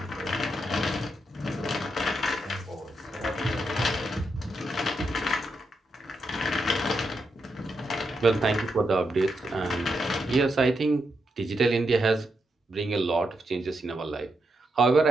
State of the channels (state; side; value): normal; both; correlation 0.83